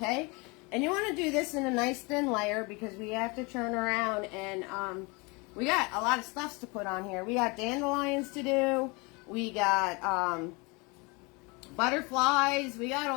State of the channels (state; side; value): quieter; right; 28.1 dB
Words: And you want to do this in a nice thin layer because we have to turn around and we got a lot of stuffs to put on here. We got dandelions to do. We got butterflies. We got